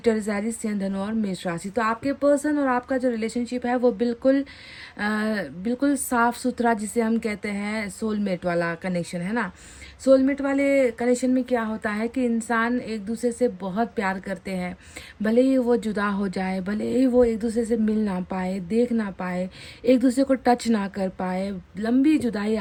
Aries, सिंह, धनु और मेष राशि। तो आपके पर्सन और आपका जो रिलेशनशिप है वो बिल्कुल साफ सुथरा, जिसे हम कहते हैं सोलमेट वाला कनेक्शन है ना। सोलमेट वाले कनेक्शन में क्या होता है कि इंसान एक दूसरे से बहुत प्यार करते हैं, भले ही वो जुदा हो जाए, भले ही वो एक दूसरे से मिल ना पाए, देख ना पाए, एक दूसरे को टच ना कर पाए, लंबी जुदाई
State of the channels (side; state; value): both; identical; correlation 1.00